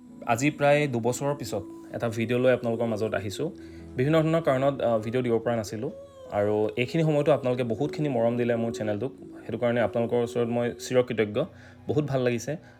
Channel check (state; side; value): identical; both; correlation 1.00